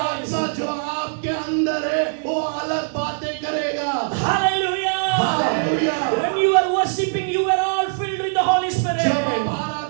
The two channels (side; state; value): left; silent; 65 dB below the other